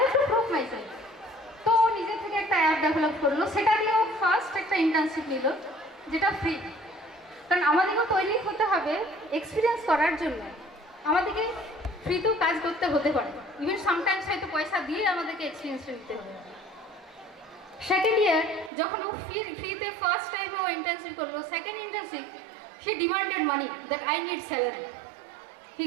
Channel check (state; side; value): drops out; left; at 18.7 s